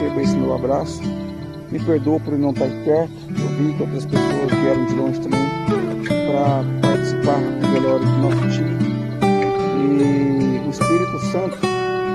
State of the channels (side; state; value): both; identical; correlation 1.00